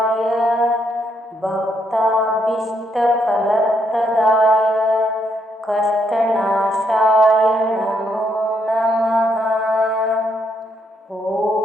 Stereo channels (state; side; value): normal; both; correlation 0.75